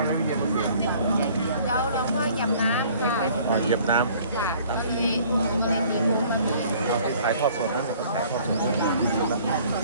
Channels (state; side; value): inverted; both; correlation -0.54